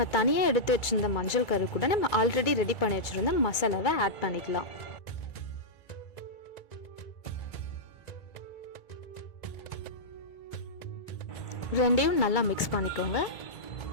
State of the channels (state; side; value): late; right; 2.2 ms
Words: தனியாக எடுத்து வச்சுருந்த மஞ்சள் கரு கூட நம்ம ஆல்ரெடி ரெடி பண்ணி வச்சுருந்த மசாலாவை ஆட் பண்ணிக்கலாம். ரெண்டையும் நல்லா மிக்ஸ் பண்ணிக்கோங்க.